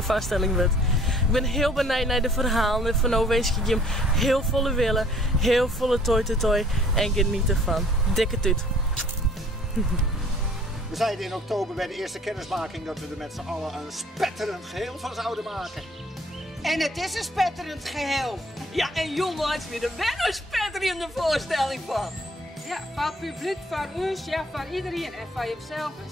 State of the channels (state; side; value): normal; both; correlation 0.56